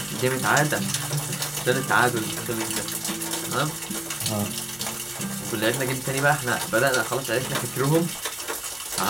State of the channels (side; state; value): right; noise; hum, 28 dB below the sound